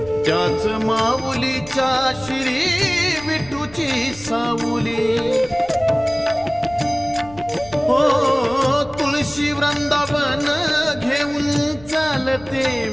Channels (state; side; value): noise; left; rumble, 20 dB below the sound